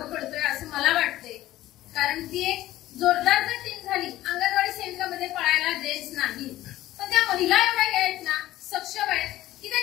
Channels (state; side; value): quieter; right; 15.2 dB